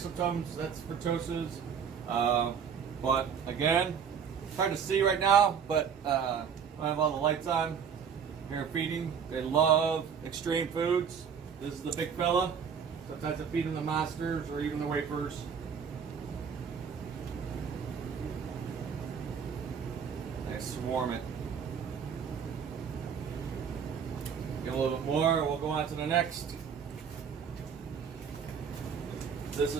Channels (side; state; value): left; quieter; 7.0 dB